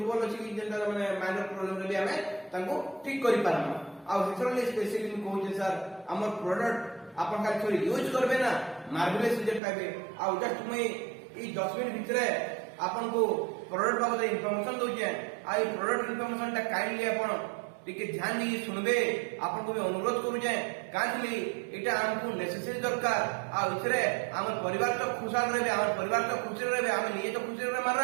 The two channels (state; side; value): drops out; left; at 9.6 s